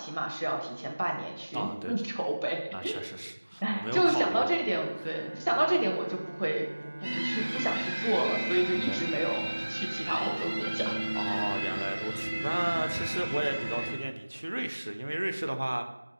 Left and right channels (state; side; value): inverted; both; correlation -1.00